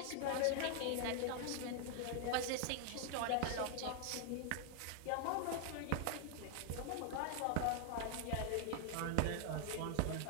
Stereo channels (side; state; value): both; different; correlation 0.00